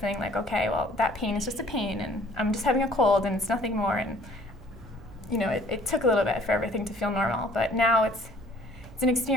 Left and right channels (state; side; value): noise; right; hum, 20 dB below the sound